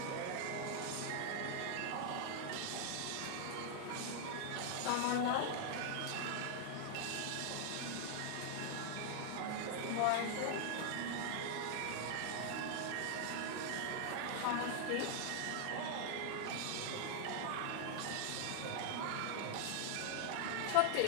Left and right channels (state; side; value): different; both; correlation -0.01